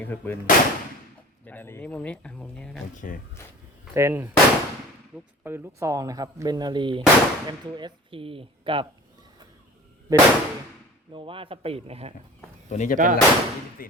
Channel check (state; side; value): normal; both; correlation 0.40